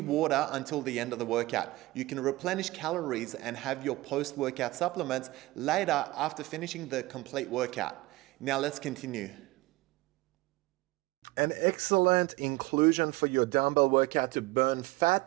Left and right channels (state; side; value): quieter; left; 19.6 dB